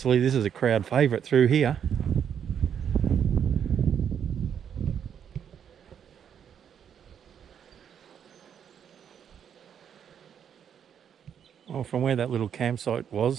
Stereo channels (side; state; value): left; quieter; 8.3 dB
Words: this is a crowd favourite through here. Well, from where that little campsite